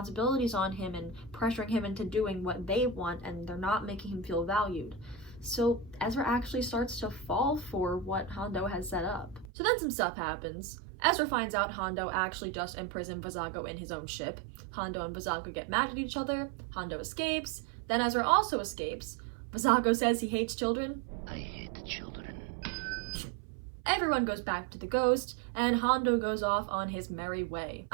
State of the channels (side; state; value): left; drops out; at 9.5 s